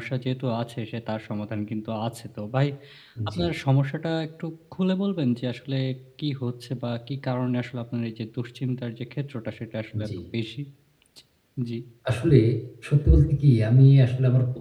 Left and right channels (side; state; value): both; identical; correlation 1.00